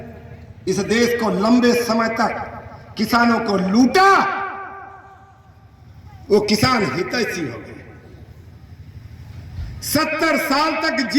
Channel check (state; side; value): identical; both; correlation 1.00